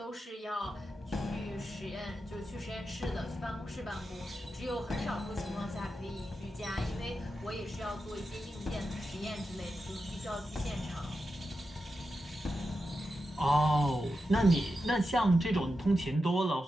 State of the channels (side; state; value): both; normal; correlation 0.89